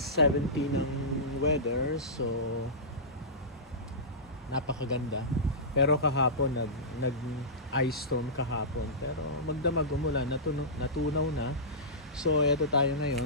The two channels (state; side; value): normal; both; correlation -0.18